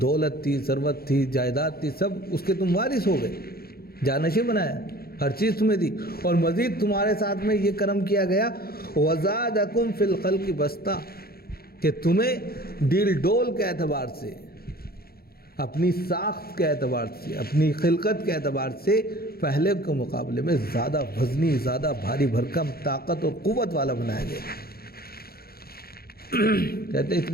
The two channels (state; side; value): late; right; 0.44 ms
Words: دولت تھی، ثروت تھی، جائیداد تھی، سب اس کے تم وارث ہو گئے، جانشین بنایا، ہر چیز تمہیں دی، اور مزید تمہارے ساتھ میں یہ کرم کیا گیا وَزَادَكُمْ فِي الْخَلْقِ بَسْطَةً، کہ تمہیں ڈیل ڈول کے اعتبار سے، اپنی ساخت کے اعتبار سے، اپنی خلقت کے اعتبار سے پہلے کے مقابلے میں زیادہ وزنی، زیادہ بھاری بھرکم، طاقت اور قوت والا بنایا گیا۔ کہتے ہیں